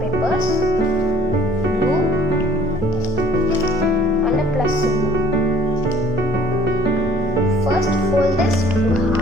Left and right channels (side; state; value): both; normal; correlation 0.55